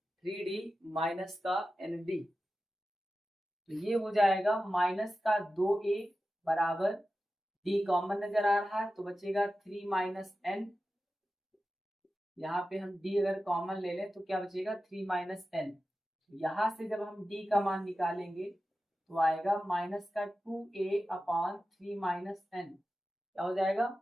3d माइनस का एन डी, तो ये हो जाएगा माइनस का 2a बराबर d कॉमन नजर आ रहा है तो बचेगा 3 माइनस एन, यहाँ पे हम d अगर कॉमन ले लें तो क्या बचेगा 3 माइनस एन, यहाँ से जब हम d का मान निकालेंगे तो आएगा माइनस का 2a अपॉन 3 माइनस एन, क्या हो जाएगा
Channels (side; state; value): both; normal; correlation 0.93